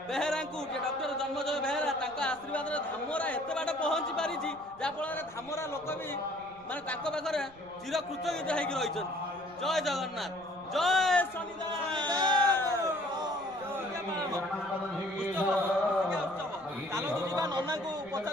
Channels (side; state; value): right; noise; rumble, 25 dB below the sound